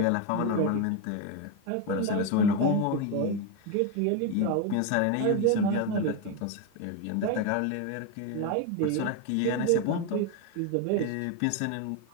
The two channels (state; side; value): different; both; correlation 0.02